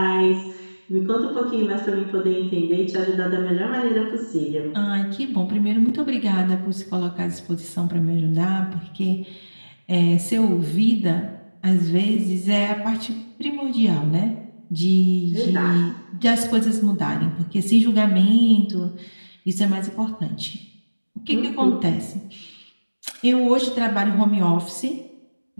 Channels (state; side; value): inverted; both; correlation -1.00